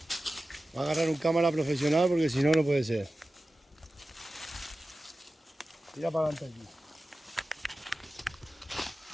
Va a agarrar un cámara profesional porque si no, no puede ser. Tira para adelante aquí.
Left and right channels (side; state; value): both; normal; correlation 0.95